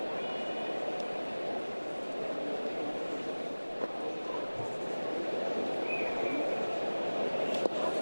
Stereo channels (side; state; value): both; inverted; correlation -1.00